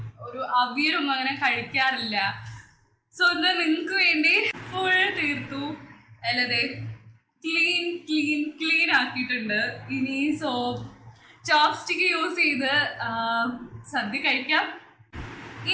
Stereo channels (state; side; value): identical; both; correlation 1.00